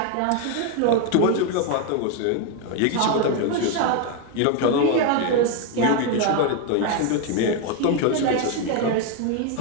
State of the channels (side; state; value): both; different; correlation 0.01